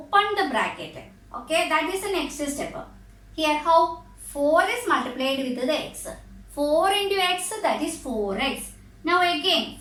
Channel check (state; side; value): identical; both; correlation 1.00